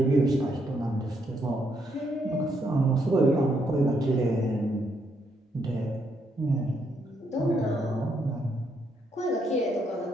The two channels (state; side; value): normal; both; correlation 0.75